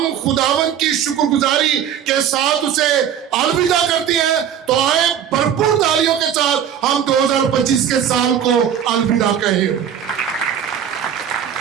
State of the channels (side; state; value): left; quieter; 9.1 dB